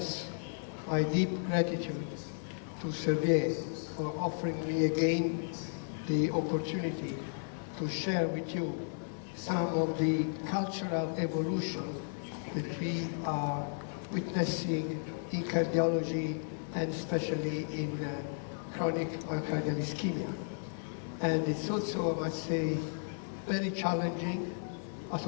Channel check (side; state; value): right; silent; digital silence